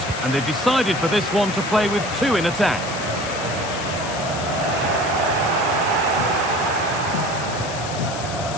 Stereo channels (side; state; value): left; noise; hiss, 9 dB below the sound